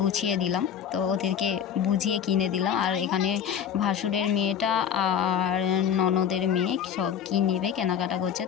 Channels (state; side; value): quieter; right; 8.5 dB